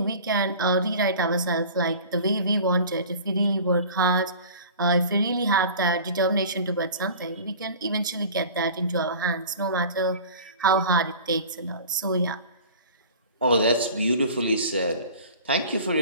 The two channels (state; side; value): inverted; both; correlation -0.41